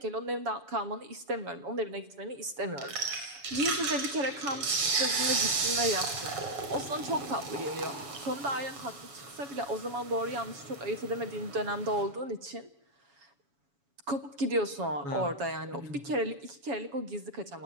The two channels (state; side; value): late; left; 7.1 ms